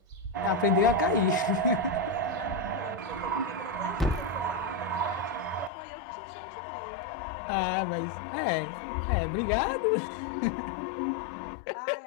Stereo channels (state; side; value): drops out; right; at 5.7 s